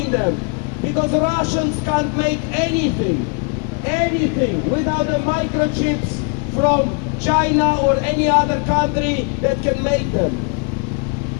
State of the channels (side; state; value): right; quieter; 35.3 dB